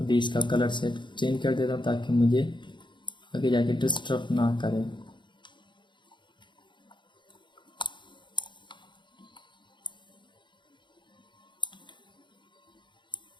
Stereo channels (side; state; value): right; late; 0.23 ms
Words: इसका कलर सेट चेंज कर देता हूँ ताकि मुझे आगे जाके डिस्टर्ब ना करे।